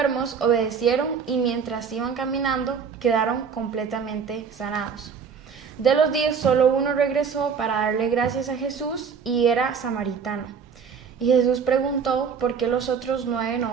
obedecieron y mientras iban caminando, quedaron completamente sanados. De los 10, solo uno regresó para darle gracias a Jesús y era samaritano. Y Jesús preguntó por qué los otros 9 no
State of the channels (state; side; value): quieter; left; 6.3 dB